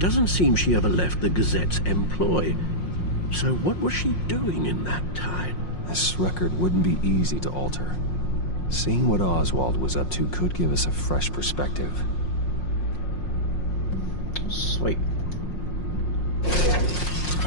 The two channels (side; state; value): right; late; 5.6 ms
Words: seem she ever left the Gazette's employ. So what was she doing in that time? This record wouldn't be easy to alter. Seeing what Oswald was up to could give us a fresh perspective. Sweet.